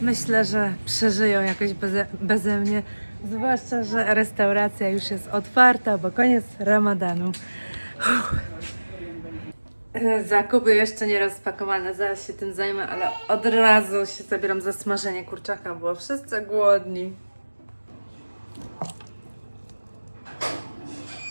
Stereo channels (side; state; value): both; inverted; correlation -1.00